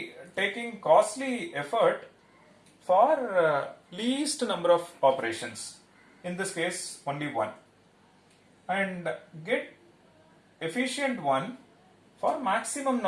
taking costly effort for least number of operations, in this case only one, and get efficient one for maximum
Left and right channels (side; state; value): both; identical; correlation 1.00